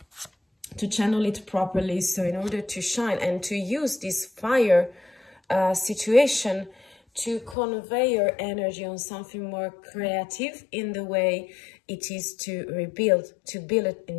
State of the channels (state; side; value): drops out; right; at 7.6 s